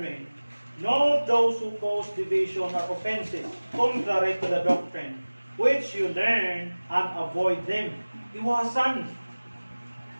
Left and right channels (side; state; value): both; inverted; correlation -1.00